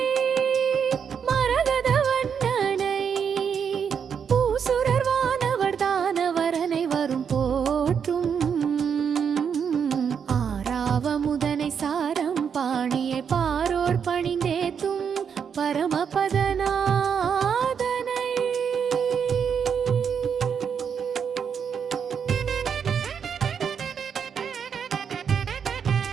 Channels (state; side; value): quieter; left; 7.1 dB